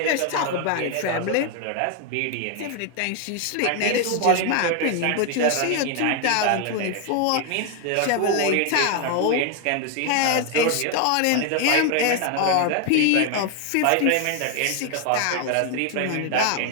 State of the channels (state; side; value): different; both; correlation 0.01